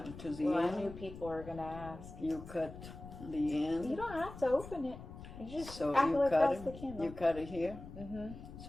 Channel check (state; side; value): noise; left; rumble, 13 dB below the sound